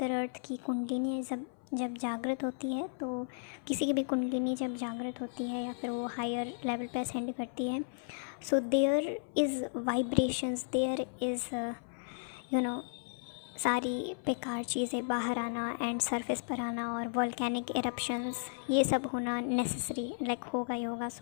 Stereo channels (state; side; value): silent; right; 55 dB below the other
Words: की कुंडलिनी जब जागृत होती है, तो किसी की भी कुंडलिनी जब जागृत होती है या फिर वो हायर लेवल पे असेंड करती है, so there is vibrations, there is you know सारी बेकार चीज़ें बाहर आना एंड सरफेस पर आना और वॉल्केनिक इरप्शंस ये सब होना नेसेसरी, लाइक होगा ही होगा।